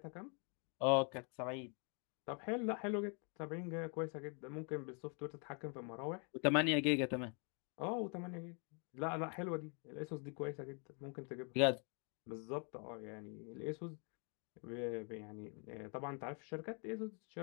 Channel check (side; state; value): right; quieter; 38.2 dB